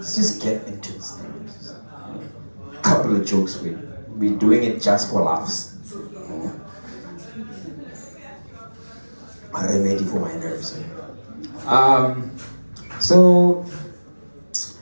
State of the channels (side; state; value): both; inverted; correlation -1.00